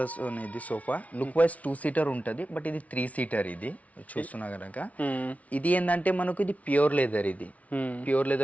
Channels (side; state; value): right; late; 0.068 ms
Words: ఇది సోఫా. లుక్ వైజ్ 2 seater ఉంటుంది. బట్ ఇది 3 seater. ఇది చూస్తున్నా కనుక ఇది ఏంటంటే మనకు ఇది ప్యూర్ లెదర్. ఇది ప్యూర్